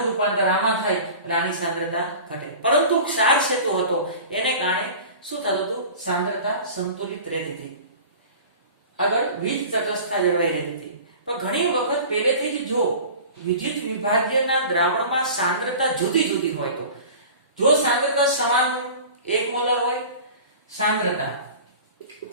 રૂપાંતર આમાં થાય એટલે આની સાંદ્રતા ઘટે. પરંતુ ક્ષાર સેતુ હતો એને કારણે શું થતું હતું? સાંદ્રતા સંતુલિત રહેતી હતી, આગળ વીજ તટસ્થતા જળવાઈ રહેતી હતી. પણ ઘણી વખત પહેલેથી જ જો વિદ્યુત વિભાજ્યના દ્રાવણમાં સાંદ્રતા જુદી જુદી હોય તો, જો સાંદ્રતા સમાન 1 મોલર હોય, સાંદ્રતા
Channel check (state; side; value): inverted; both; correlation -0.39